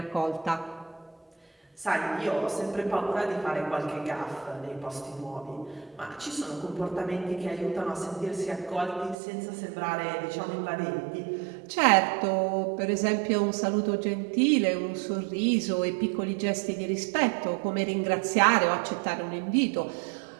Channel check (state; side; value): drops out; left; at 9.2 s